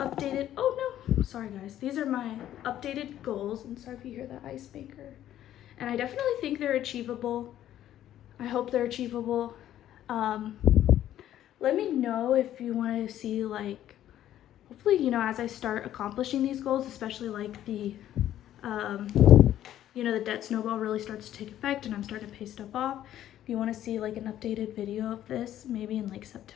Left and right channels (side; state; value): right; quieter; 12.0 dB